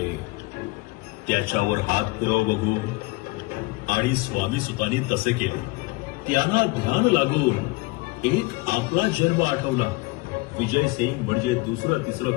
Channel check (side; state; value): right; quieter; 23.9 dB